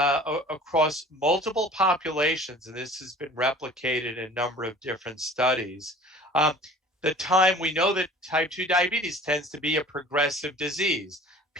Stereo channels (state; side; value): normal; both; correlation 0.46